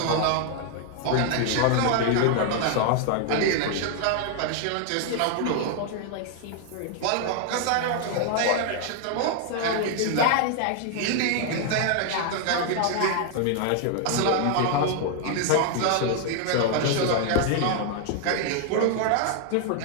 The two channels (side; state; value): both; different; correlation 0.00